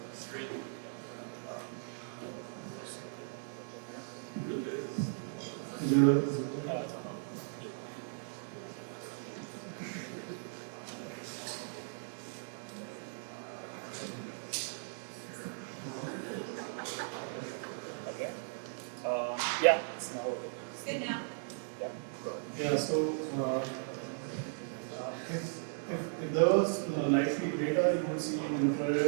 Yeah, it's now working. It's good now. Yeah, so if there was live feed data, you would see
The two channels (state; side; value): silent; left; digital silence